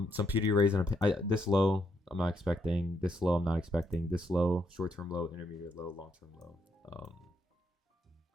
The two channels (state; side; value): normal; both; correlation 0.76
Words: PD arrays this low I'm not expecting, this low I'm not expecting, this low, short-term low, intermediate low, long-term low.